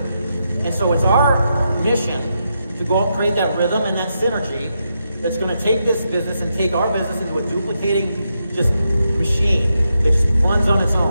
And so it's our mission to go out and create that rhythm and that synergy that's going to take this business and take our business into a duplicating just machine that just runs on its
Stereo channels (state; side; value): inverted; both; correlation -0.84